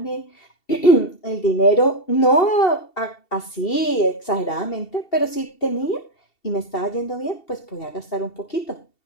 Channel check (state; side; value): late; right; 2.7 ms